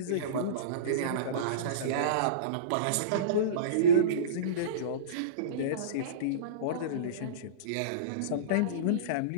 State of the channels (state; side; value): different; both; correlation -0.08